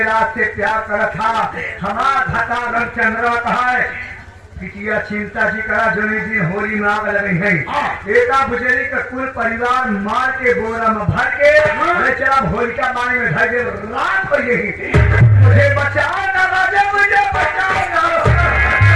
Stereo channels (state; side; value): identical; both; correlation 1.00